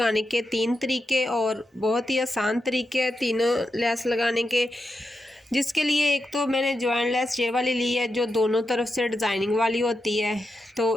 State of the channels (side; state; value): both; normal; correlation 0.87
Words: के 3 तरीके और बहुत ही आसान तरीके हैं तीनों लेस लगाने के। जिसके लिए एक तो मैंने जॉइंट लेस ये वाली ली है जो दोनों तरफ से डिज़ाइनिंग वाली होती है,